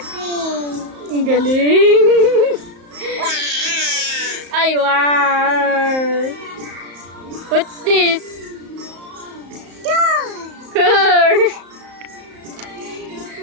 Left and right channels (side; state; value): left; late; 34 ms